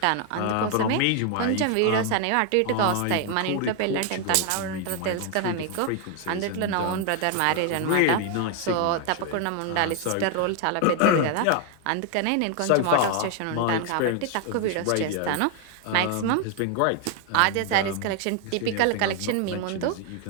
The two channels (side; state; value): both; different; correlation 0.00